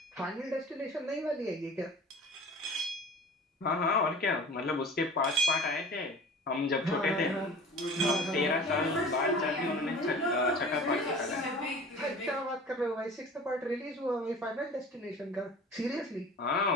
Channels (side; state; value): both; normal; correlation 0.42